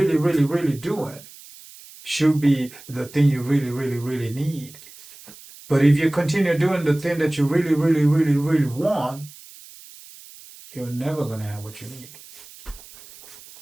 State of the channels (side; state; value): right; noise; hiss, 20 dB below the sound